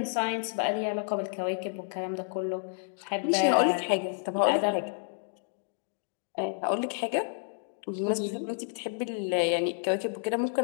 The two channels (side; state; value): right; silent; digital silence